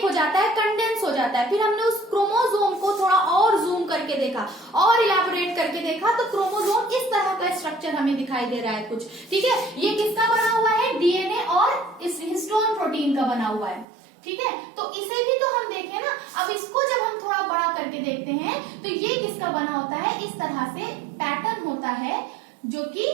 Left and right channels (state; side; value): drops out; left; at 13.9 s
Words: हो जाता है, कंडेंस हो जाता है। फिर हमने उस क्रोमोसोम को थोड़ा और जूम करके देखा और इलैबोरेट करके देखा तो क्रोमोसोम इस तरह का स्ट्रक्चर हमें दिखाई दे रहा है कुछ, ठीक है। ये किसका बना हुआ है, डीएनए और इस हिस्टोन प्रोटीन का बना हुआ है, ठीक है। तो इसे भी तो हम देखें ना। अब इसको जब हम थोड़ा बड़ा करके देखते हैं तो ये किसका बना होता है, इस तरह से पैटर्न होता है जो कि